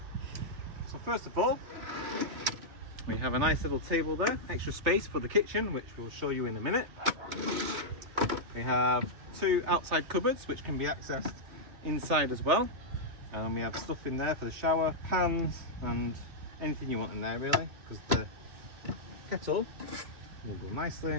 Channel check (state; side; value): late; left; 3.5 ms